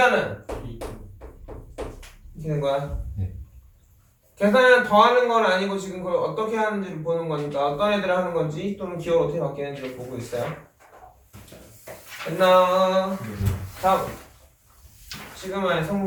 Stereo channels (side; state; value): both; identical; correlation 1.00